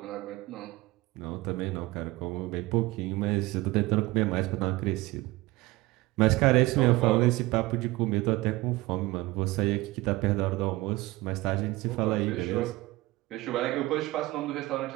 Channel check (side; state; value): left; quieter; 20.1 dB